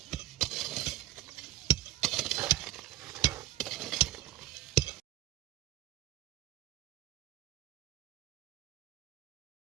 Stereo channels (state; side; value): quieter; left; 14.5 dB